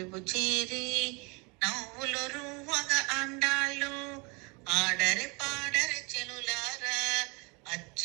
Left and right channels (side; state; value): left; quieter; 29.8 dB